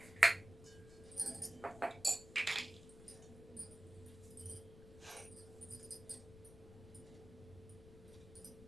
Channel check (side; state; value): left; noise; rumble, 18 dB below the sound